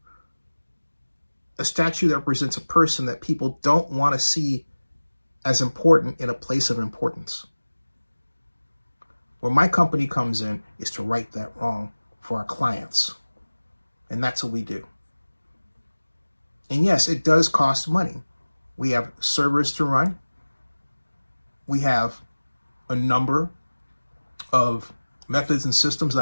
A statue that represents a person that people don't want to see as important in a place of importance. Where my company comes in is to right that wrong for our clients. And that's what we do. And yes, it does cost money. We have servers to run. We have a number of methods and systems that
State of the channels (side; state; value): both; inverted; correlation -1.00